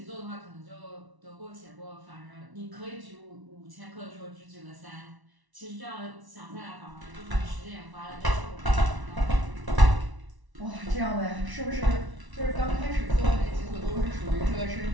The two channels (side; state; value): left; late; 1.0 ms